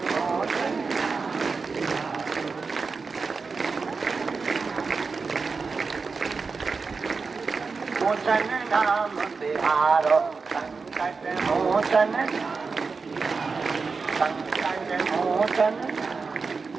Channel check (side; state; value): left; quieter; 4.6 dB